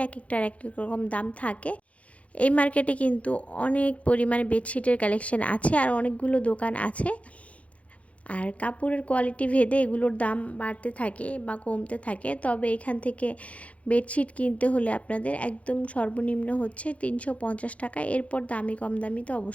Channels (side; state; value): right; late; 0.065 ms